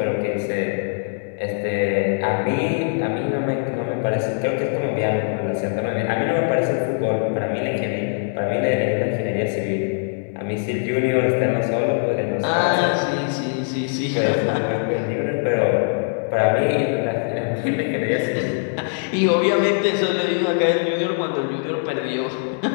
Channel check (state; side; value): silent; right; 63 dB below the other